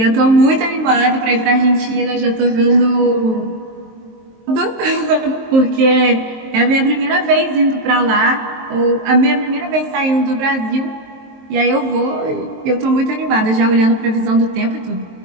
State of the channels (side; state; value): left; late; 23 ms